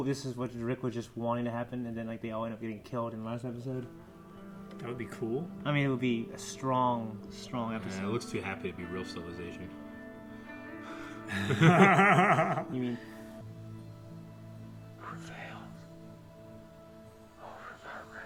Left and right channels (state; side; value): identical; both; correlation 1.00